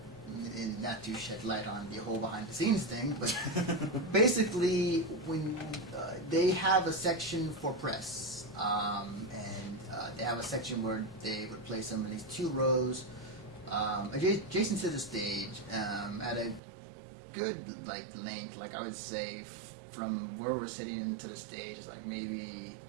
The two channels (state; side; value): drops out; left; at 16.6 s